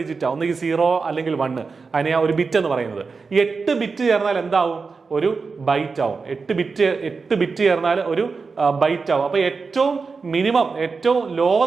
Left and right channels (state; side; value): quieter; left; 4.7 dB